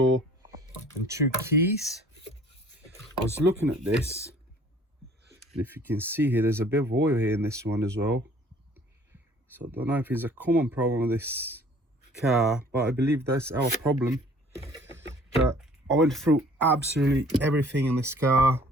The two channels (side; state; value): both; normal; correlation 0.53